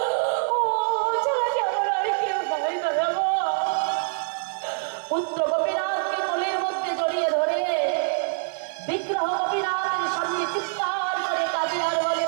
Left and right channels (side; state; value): left; silent; 62 dB below the other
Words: পুত্র গোপীনাথকে কোলের মধ্যে জড়িয়ে ধরে বিগ্রহ গোপীনাথের সামনে চিৎকার করে কাঁদে আর বলে,